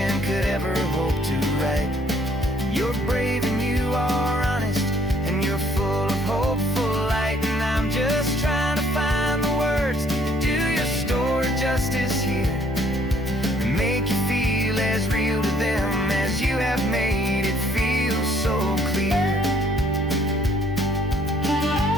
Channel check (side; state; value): both; normal; correlation 0.63